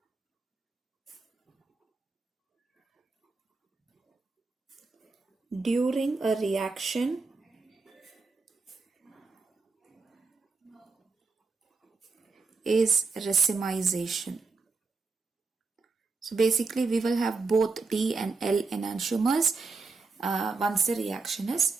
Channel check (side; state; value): left; quieter; 4.1 dB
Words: during a reaction is racemization. So basically we will have both D and L enantiomers once the reaction